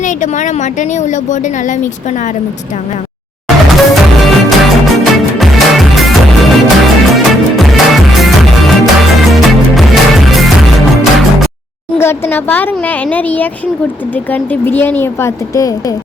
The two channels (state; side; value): normal; both; correlation 0.73